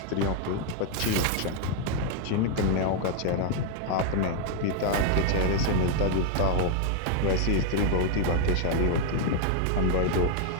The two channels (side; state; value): both; different; correlation 0.00